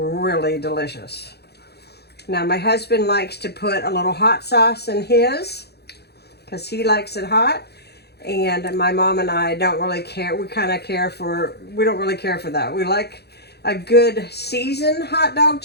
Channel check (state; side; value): late; right; 0.48 ms